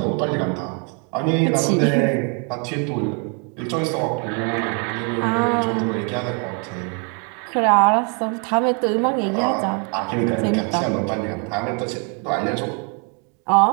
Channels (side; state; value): left; quieter; 37.0 dB